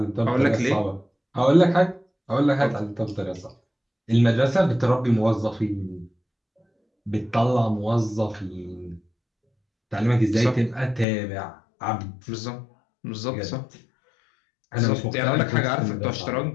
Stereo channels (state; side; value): drops out; right; at 11.1 s